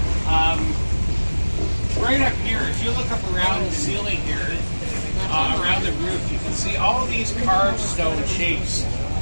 Right up here, if you look up around the ceiling here, around the roof, you can see all these carved stone shapes.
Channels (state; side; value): inverted; both; correlation -1.00